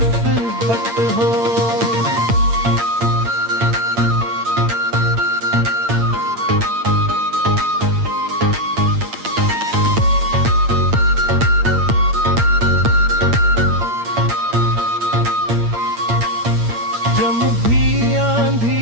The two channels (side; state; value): left; late; 8.7 ms